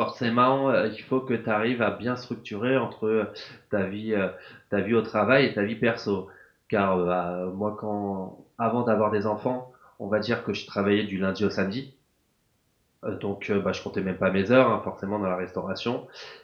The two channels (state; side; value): identical; both; correlation 1.00